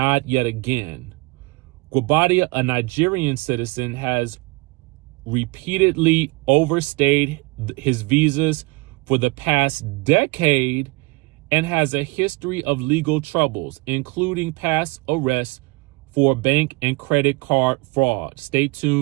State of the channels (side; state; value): left; quieter; 25.0 dB